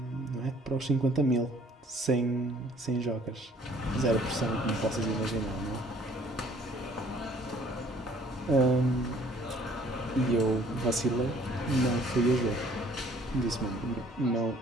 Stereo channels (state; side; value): normal; both; correlation 0.57